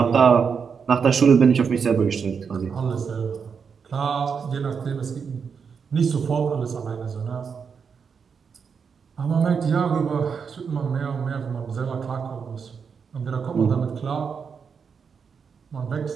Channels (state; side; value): quieter; left; 6.2 dB